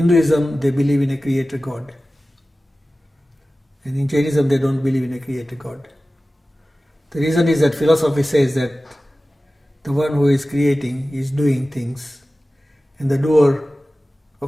they believe in a creator God, and in Jainism they don't believe in a creator God. The reason is that philosophy says that the one who is creating is doing things, and the doer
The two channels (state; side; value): normal; both; correlation 0.96